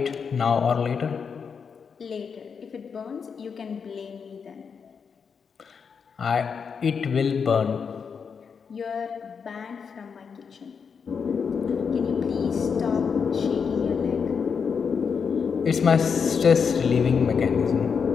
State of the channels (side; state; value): right; quieter; 6.2 dB